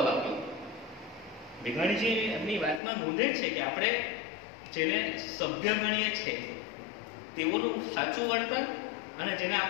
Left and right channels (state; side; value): drops out; right; at 2.8 s